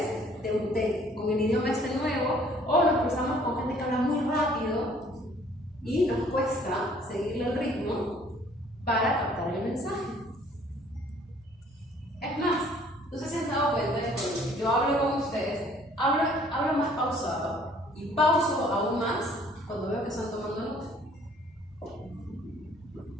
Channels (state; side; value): normal; both; correlation 0.58